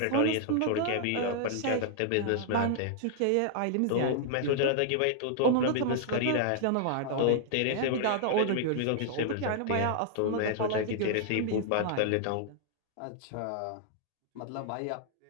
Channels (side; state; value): both; different; correlation -0.01